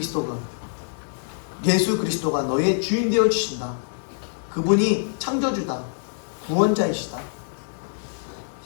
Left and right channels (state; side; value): silent; right; digital silence